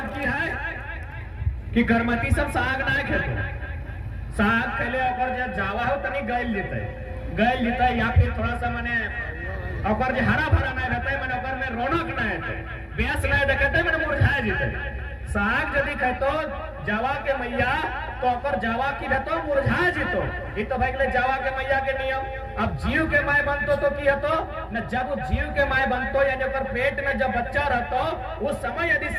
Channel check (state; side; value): identical; both; correlation 1.00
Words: की है कि करमती सब साग ना खेतो साग खेले ओकर जे जावा हो तनी गइल जेते या फिर थोड़ा सा माने ओकर जे हरा भरा नहीं रहते माने ओकर में रौनक ना हेते बेस नहीं देखते माने मुरझा जेते साग यदि खेतो जावा के मैया तो ओकर जावा की रहतो मुरझा जेतो ई तो भाई जावा के मैया के नियम। अब जीव के माय बनतो तो की हतो न जब वो जीव के माय बनतो यानी ओकर पेट में जब बच्चा रहतो उस समय यदि